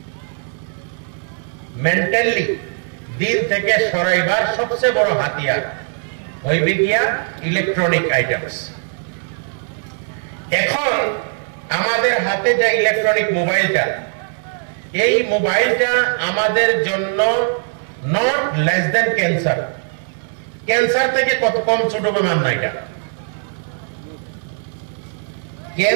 মেন্টালি দিন থেকে সরাইবার সবচেয়ে বড় হাতিয়ার হইবে গিয়া ইলেকট্রনিক আইটেমস। এখন আমাদের হাতে যে ইলেকট্রনিক মোবাইলটা, এই মোবাইলটা আমাদের জন্য not less than cancer. Cancer থেকে কত কম ছোট বেমার না এটা।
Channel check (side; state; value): left; silent; 66 dB below the other